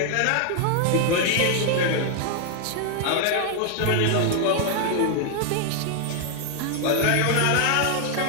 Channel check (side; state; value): both; different; correlation 0.00